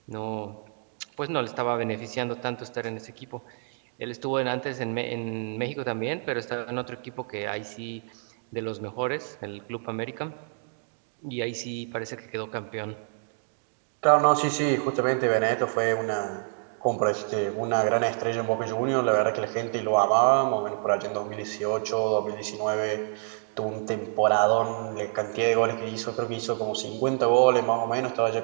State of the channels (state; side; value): silent; left; digital silence